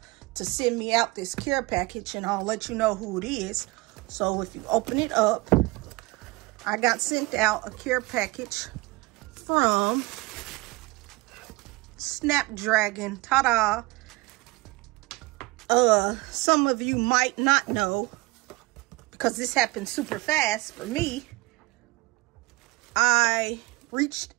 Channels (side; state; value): left; quieter; 22.8 dB